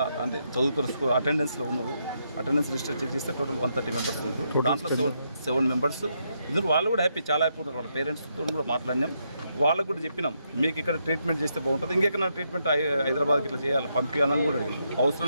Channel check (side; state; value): both; inverted; correlation -0.79